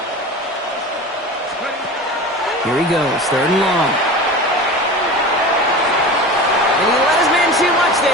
Here he goes, 3rd and long. And he let his man too much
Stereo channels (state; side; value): normal; both; correlation 0.32